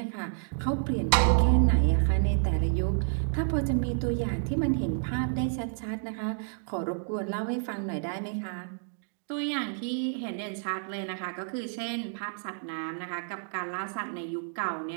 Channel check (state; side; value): silent; left; digital silence